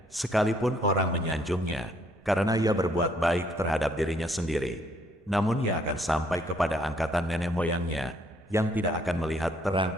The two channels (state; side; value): normal; both; correlation 0.66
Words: sekalipun orang menyanjungnya, karena ia berbuat baik terhadap dirinya sendiri, namun ia akan sampai kepada angkatan nenek moyangnya, yang tidak akan melihat